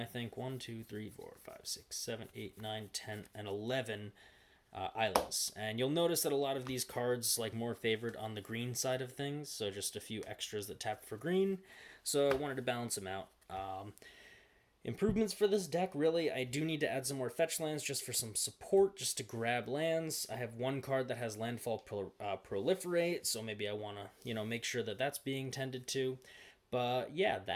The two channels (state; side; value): identical; both; correlation 1.00